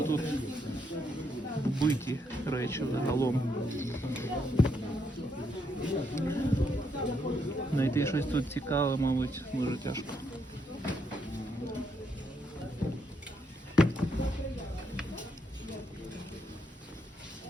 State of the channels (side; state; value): both; normal; correlation 0.77